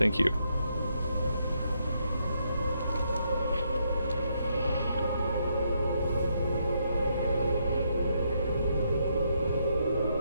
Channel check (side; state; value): both; inverted; correlation -0.76